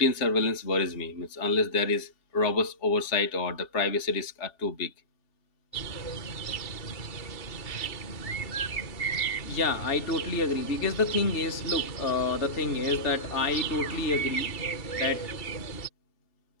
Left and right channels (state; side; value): late; right; 2.7 ms